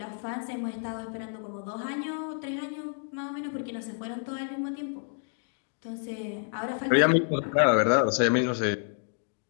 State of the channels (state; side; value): silent; right; digital silence